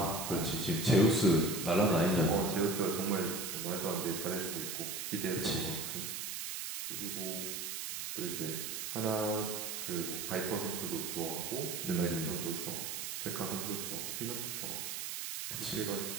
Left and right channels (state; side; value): noise; right; hiss, 4 dB below the sound